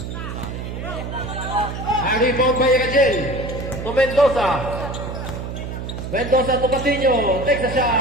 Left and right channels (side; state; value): right; noise; hum, 7 dB below the sound